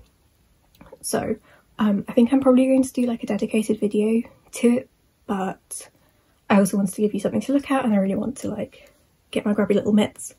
So I think I'm probably going to do a dedicated video to it, but I also wanted to give you something to look at, and I really want to get my grubby little mitts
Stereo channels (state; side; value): identical; both; correlation 1.00